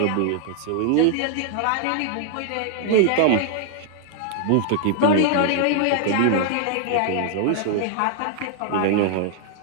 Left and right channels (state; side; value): different; both; correlation 0.00